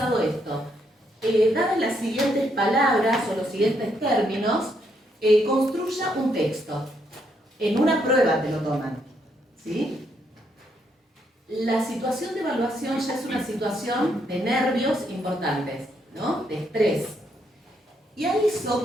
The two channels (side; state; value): both; normal; correlation 0.75